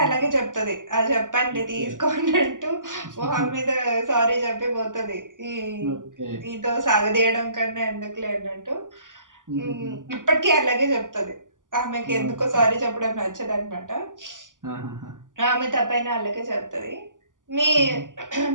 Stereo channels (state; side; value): late; left; 0.88 ms